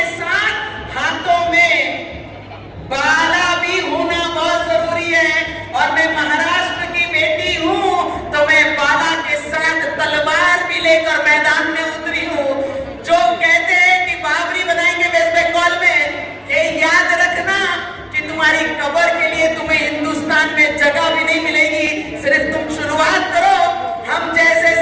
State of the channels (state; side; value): identical; both; correlation 1.00